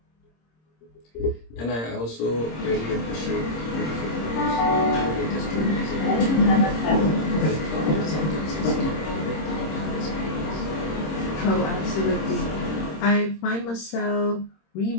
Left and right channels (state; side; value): late; right; 26 ms